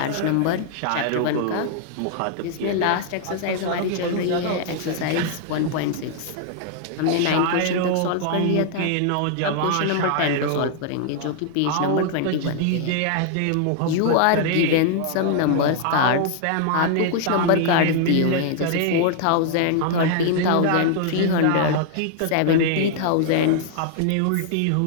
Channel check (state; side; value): different; both; correlation 0.00